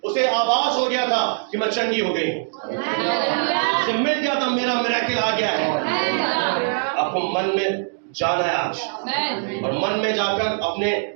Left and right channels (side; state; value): left; silent; digital silence